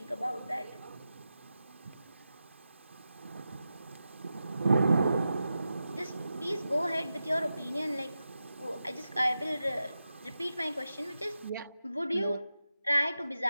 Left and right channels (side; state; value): both; inverted; correlation -0.91